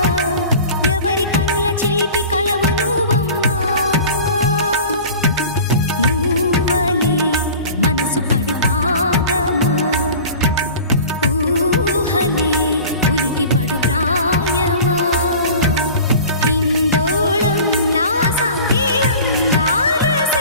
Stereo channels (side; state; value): both; inverted; correlation -0.40